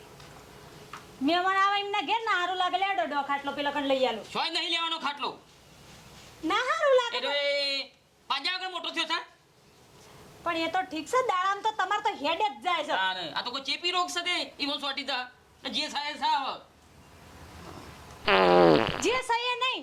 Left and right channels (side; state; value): both; identical; correlation 1.00